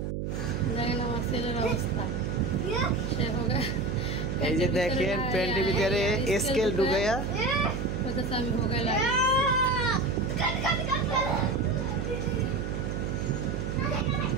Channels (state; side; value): noise; right; hum, 3 dB below the sound